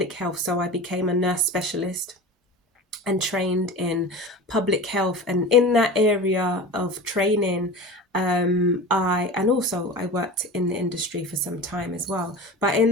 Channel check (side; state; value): both; normal; correlation 0.33